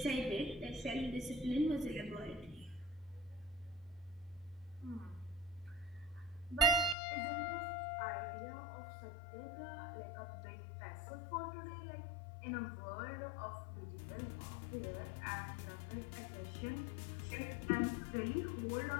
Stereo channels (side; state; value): right; drops out; at 7.0 s